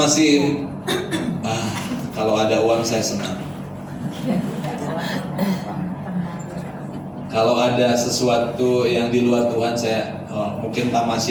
kalau ada uang saya senang. Kalau ada sesuatu yang di luar Tuhan, saya mungkin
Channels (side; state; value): both; identical; correlation 1.00